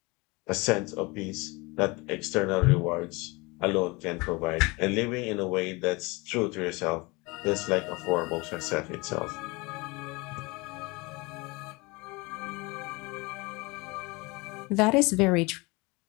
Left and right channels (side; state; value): right; quieter; 25.5 dB